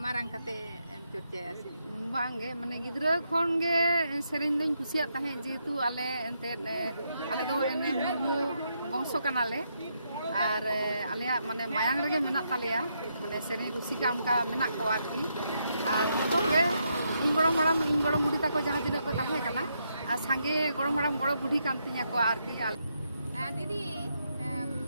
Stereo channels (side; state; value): both; inverted; correlation -0.79